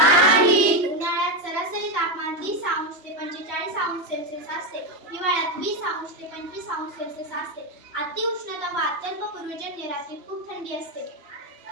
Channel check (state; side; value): late; left; 3.2 ms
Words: उन्हाळ्यात सरासरी तापमान 30 अंश ते 45 अंश सेल्सिअस असते। हिवाळ्यात 20 अंश ते 25 अंश सेल्सिअस असते। अति उष्णता व अत्यल्प पूर्वजन्य रात्री खूप थंडी असते।